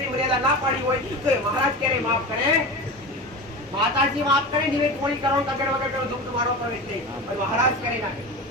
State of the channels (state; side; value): normal; both; correlation 0.28